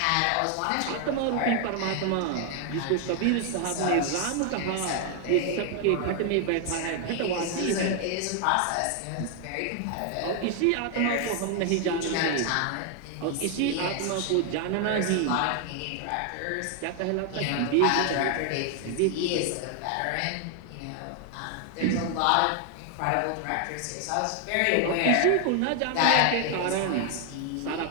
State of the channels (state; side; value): different; both; correlation 0.00